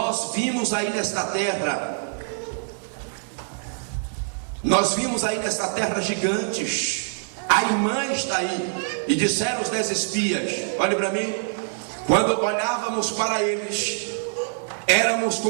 vimos aí nesta terra gigantes, Aimã está aí. E disseram os 10 espias, olhe para mim, quando olhávamos para eles, éramos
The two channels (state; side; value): silent; left; digital silence